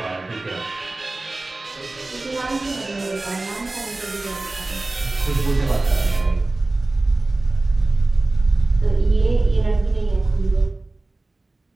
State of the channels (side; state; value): left; quieter; 3.0 dB